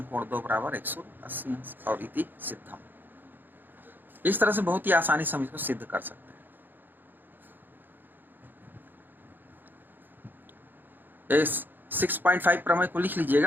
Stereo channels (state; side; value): late; left; 0.091 ms